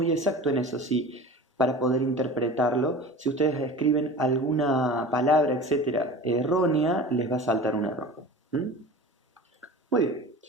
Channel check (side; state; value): both; normal; correlation 0.36